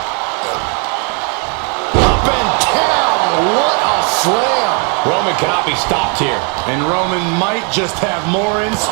Up and down, what a slam. Roman cannot be stopped here. And Roman might just have more in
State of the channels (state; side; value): quieter; left; 37.0 dB